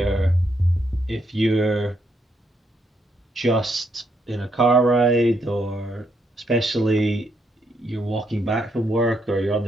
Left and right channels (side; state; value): both; normal; correlation 0.77